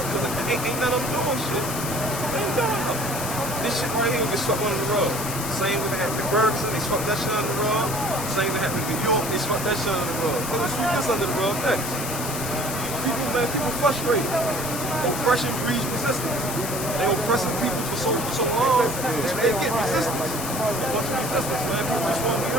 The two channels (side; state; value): left; noise; hiss, 6 dB below the sound